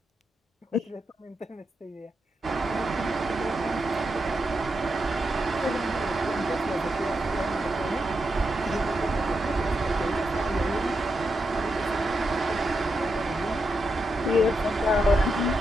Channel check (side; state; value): both; normal; correlation 0.85